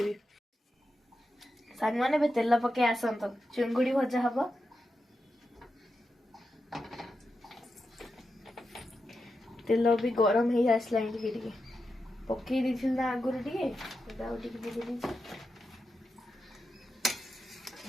सांग माने बे तेल पके आसंत चुंगुड़ी भजा हबो तेल भी गरम हो आसला टिके पकई दी ना आगुरी टिके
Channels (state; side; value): normal; both; correlation 0.88